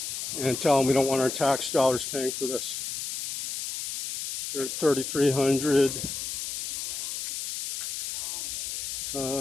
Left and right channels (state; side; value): noise; left; hiss, 5 dB below the sound